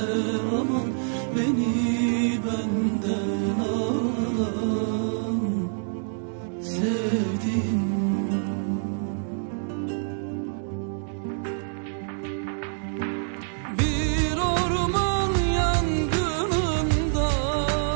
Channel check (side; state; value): left; silent; digital silence